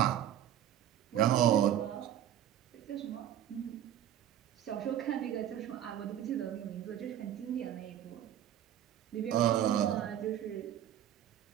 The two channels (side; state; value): left; quieter; 11.3 dB